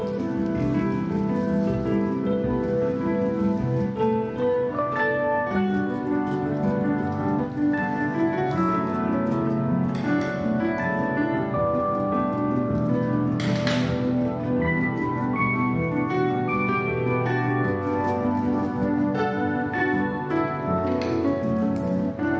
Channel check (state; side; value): identical; both; correlation 1.00